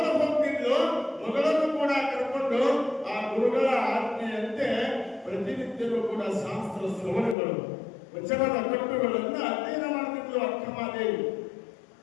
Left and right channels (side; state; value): right; drops out; at 7.4 s